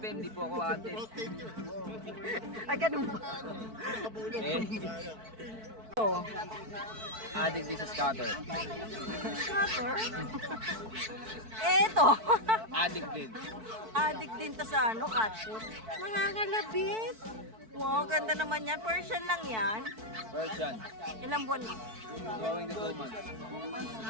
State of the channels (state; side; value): late; left; 4.5 ms